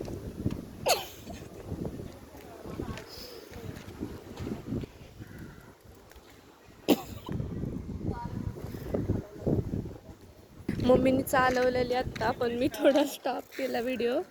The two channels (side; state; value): both; identical; correlation 1.00